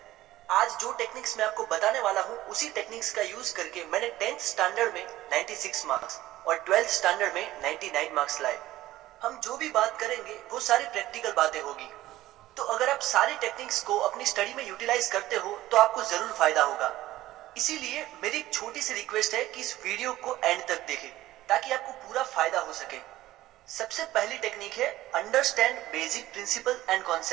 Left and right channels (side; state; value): left; quieter; 15.7 dB